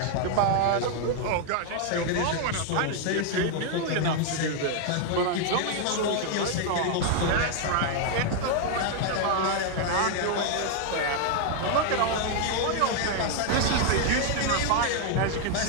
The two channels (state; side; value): different; both; correlation 0.00